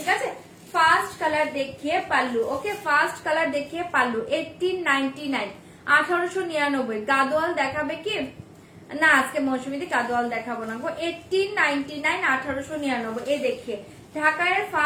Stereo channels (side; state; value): both; identical; correlation 1.00